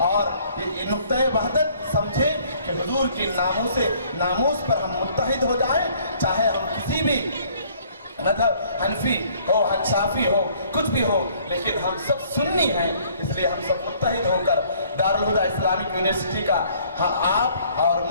اور یہ نقطہ وحدت سمجھیں کہ حضور کی ناموس پر ہم متحد ہو جائیں، چاہے ہم کسی بھی مذہب حنفی ہو، شافی ہو، کچھ بھی ہو، لیکن ہم سب سنی ہیں۔ اس لیے ہم سب متحد ہو کر دارالہدیٰ اسلامک یونیورسٹی کا آپ اور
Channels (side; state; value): both; inverted; correlation -0.59